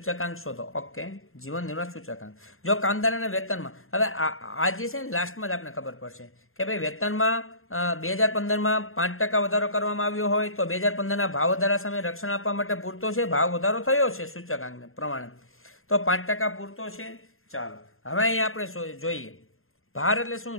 શોધો. ઓકે, જીવન નિર્વાહ સૂચકાંક. જો કામદારોના વેતનમાં, હવે આ જે છે ને લાસ્ટમાં જ આપણે ખબર પડશે કે ભાઈ વેતનમાં 2015માં 5% વધારો કરવામાં આવ્યો હોય તો 2015ના ભાવ વધારા સામે રક્ષણ આપવા માટે પૂરતો છે. ભાવ વધારો થયો છે સૂચકાંકને પ્રમાણે, તો 5% પૂરતો છે. ચાલો હવે અહીંયા આપણે જોઈએ ભાર એટલે શું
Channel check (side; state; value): right; late; 0.61 ms